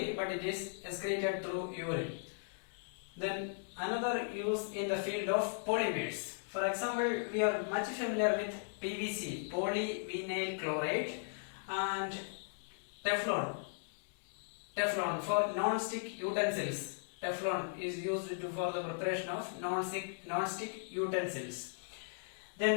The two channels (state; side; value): silent; right; digital silence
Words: but it is excreted through urine. Then another use in the field of polymers. For example, we are much familiar with PVC, polyvinyl chloride, and Teflon for non-stick utensils. Teflon is used for the preparation of non-stick utensils.